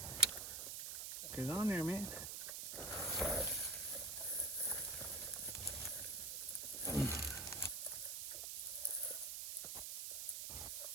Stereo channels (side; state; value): right; noise; hiss, 3 dB below the sound